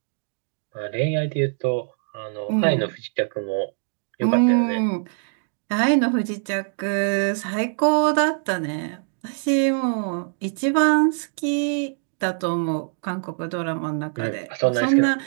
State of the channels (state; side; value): silent; left; 63 dB below the other